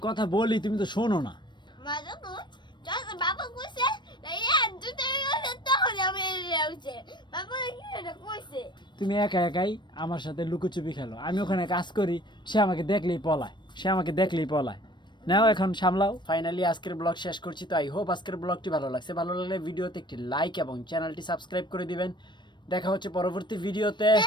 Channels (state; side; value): late; right; 0.22 ms